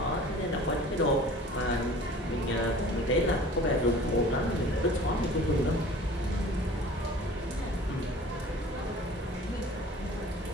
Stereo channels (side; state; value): both; normal; correlation 0.45